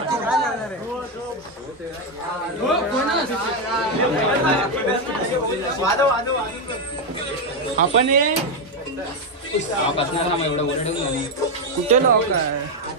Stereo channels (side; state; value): both; normal; correlation 0.05